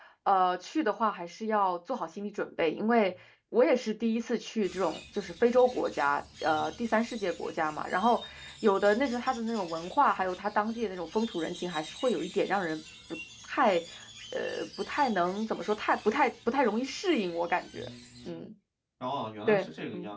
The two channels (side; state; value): both; identical; correlation 1.00